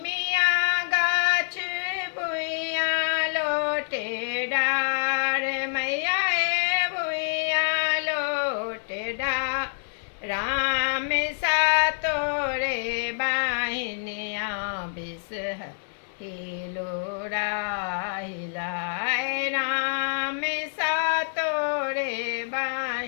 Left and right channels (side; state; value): right; silent; 60 dB below the other